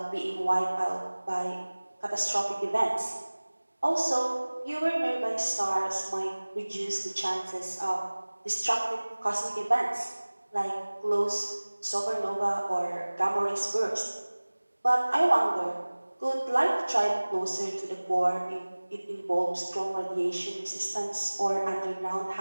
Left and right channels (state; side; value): inverted; both; correlation -1.00